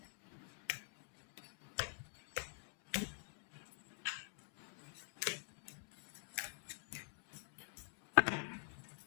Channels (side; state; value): right; silent; digital silence